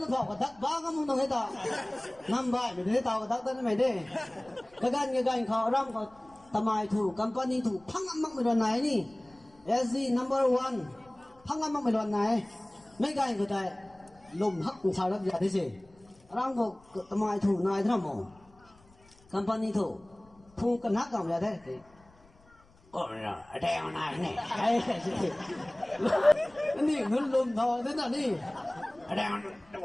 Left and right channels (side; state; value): left; noise; rumble, 28 dB below the sound